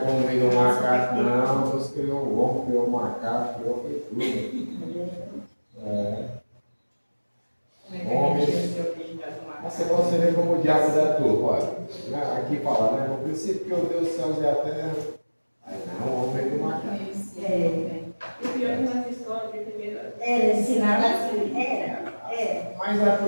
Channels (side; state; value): both; inverted; correlation -1.00